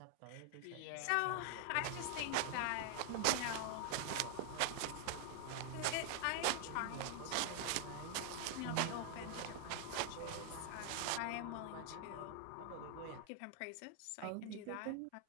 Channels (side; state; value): both; different; correlation 0.00